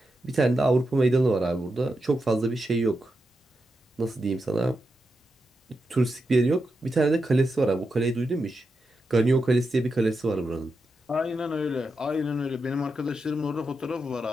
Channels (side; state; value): both; normal; correlation 0.87